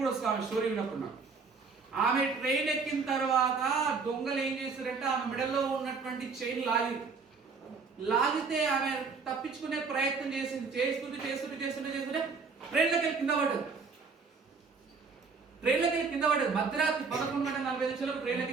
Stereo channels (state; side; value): quieter; left; 4.9 dB